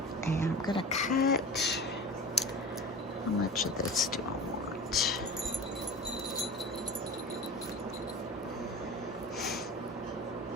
And I'm gonna cut, how much of this do I want?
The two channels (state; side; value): normal; both; correlation 0.34